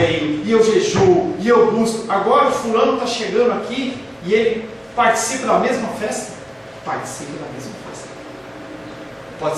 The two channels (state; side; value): identical; both; correlation 1.00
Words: e eu jejuo, e eu busco. Agora o fulano está chegando aqui e ele participa da mesma festa? Participa da mesma festa. Pode